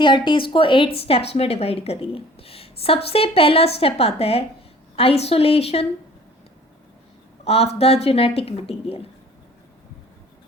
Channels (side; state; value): both; normal; correlation 0.50